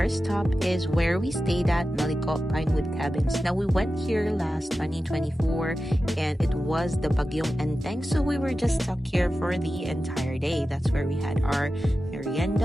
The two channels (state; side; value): normal; both; correlation 0.93